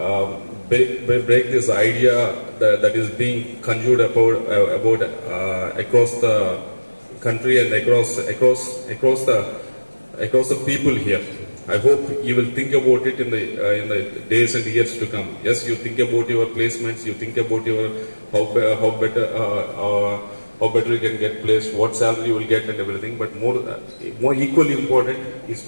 idea that is being conjured about across the country and across the people here. I hope you will think about it in the days and years to come. Yes, you think about your placements, you think about your how better you can get placed, what salary you will get, and everything. But more equally important is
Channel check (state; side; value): inverted; both; correlation -1.00